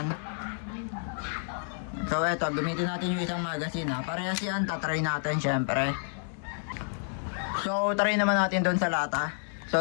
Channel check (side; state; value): right; silent; digital silence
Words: So, eto, gamitin natin yung isang magazine, ha. Parehas yan, tatry natin, syempre. So, try naman natin doon sa lata. So,